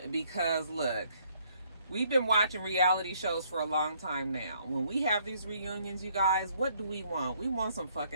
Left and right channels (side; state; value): both; inverted; correlation -0.67